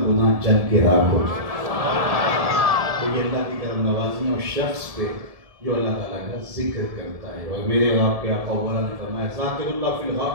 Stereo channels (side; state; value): left; late; 1.7 ms